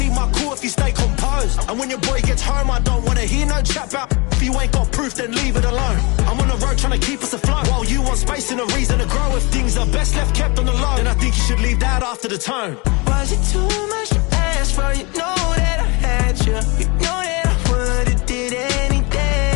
my cool if you stay composed. And when your boy gets home, I don't wanna hear no chat about. If you ain't got proof, then leave it alone. I'm on the road trying to keep us afloat. While you want space and a reason to grow. If things are best left kept on the low, then I think you should leave that after the tone. Was it too much to ask for? You know that I had you. You know that I would've did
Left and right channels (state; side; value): quieter; right; 27.6 dB